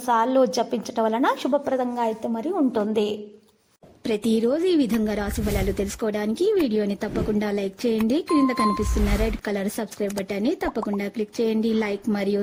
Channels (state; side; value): identical; both; correlation 1.00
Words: సార్లు జపించడం వలన శుభప్రదంగా అయితే మరి ఉంటుంది. ప్రతిరోజు ఈ విధంగా రాశి ఫలాలు తెలుసుకోవడానికి వీడియోని తప్పకుండా లైక్ చేయండి. క్రింద కనిపిస్తున్న రెడ్ కలర్ సబ్స్క్రైబ్ బటన్ ని తప్పకుండా క్లిక్ చేయండి. లైక్ మరియు